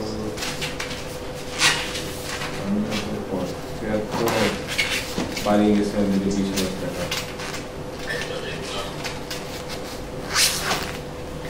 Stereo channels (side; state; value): both; identical; correlation 1.00